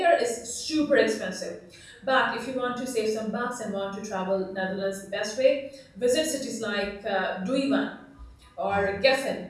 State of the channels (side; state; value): both; identical; correlation 1.00